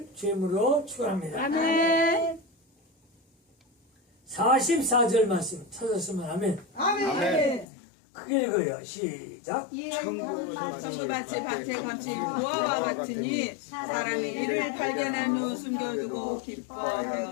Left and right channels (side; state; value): right; drops out; at 7.7 s